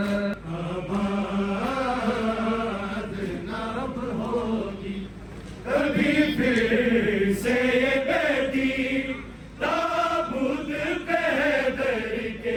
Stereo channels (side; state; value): both; identical; correlation 1.00